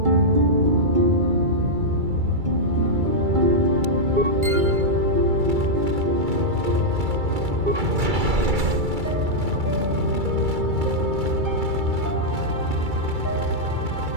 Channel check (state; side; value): late; left; 2.3 ms